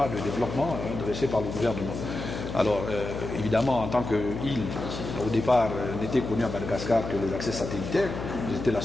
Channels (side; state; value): left; noise; hum, 7 dB below the sound